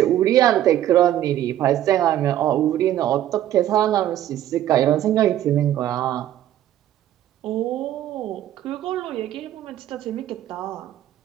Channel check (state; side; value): quieter; left; 12.4 dB